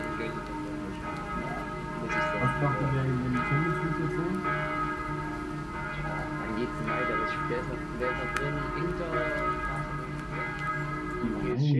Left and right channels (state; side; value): identical; both; correlation 1.00